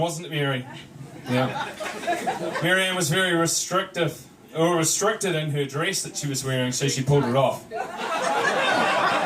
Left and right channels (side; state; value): both; identical; correlation 1.00